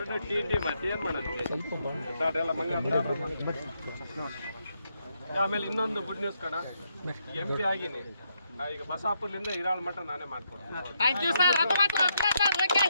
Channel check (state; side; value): inverted; both; correlation -0.79